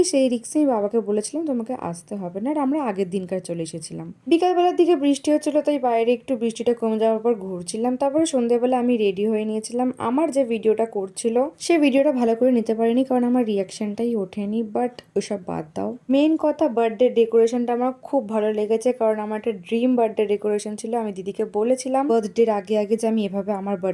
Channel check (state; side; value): identical; both; correlation 1.00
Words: সেই রিক্সেই বাবাকে বলেছিলাম তোমাকে আসতে হবে না। আর আমরা আগের দিনকার চলে এসেছিলাম। বিকালবেলার দিকে বৃষ্টি হচ্ছিল, তাই বাইরে একটু বৃষ্টিটা কমে যাওয়ার পর ঘুরছিলাম। তারপরে সন্ধ্যেবেলা আমি রেডি হয়ে নিয়েছিলাম। আমার যে ভিডিওটা করছিল সেই ভিডিওটা ভালো করে নিতে পারিনি, কারণ আমার রিয়াকশনটাই ওঠেনি। বাট ওসব বাদ দাও, মেইন কথা বার্থডে ডেকোরেশনটা আমার খুব ভালো লেগেছে, কারণ আমার একটা ড্রিম বার্থডে ডেকোরেশন ছিল। আমি দিদিকে বলেছিলাম বার্থডের আগে আগে যে আমি এভাবে আমার